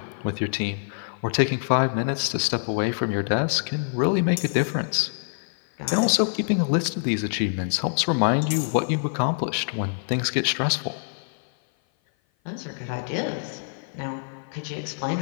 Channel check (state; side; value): silent; right; 56 dB below the other